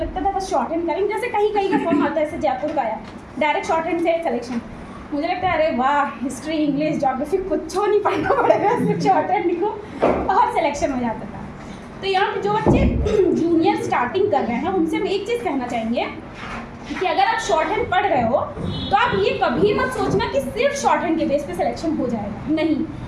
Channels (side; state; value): both; identical; correlation 1.00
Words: था बस शॉर्ट हैंड करेंगे। जैसे कहीं कहीं का फॉर्म आता है, जैसे जयपुर का आया डायरेक्ट शॉर्ट हैंड से सिलेक्शन, मुझे लगता है अरे वाह, हिस्ट्री इंग्लिश ज्योग्राफी कुछ नहीं पढ़ना पड़ेगा, सिर्फ शॉर्ट हैंड लिखो और सिलेक्शन हो जाता था। तो यहाँ पे जो बच्चे जूनियर स्टार्टिंग कर रहे हैं उनसे हम एक चीज़ कहना चाहेंगे कि अगर आप शॉर्ट हैंड पढ़ रहे हो तो आप ये कभी मत सोचना कि सिर्फ शॉर्ट हैंड के बेस पे सिलेक्शन हो जाएगा। नहीं,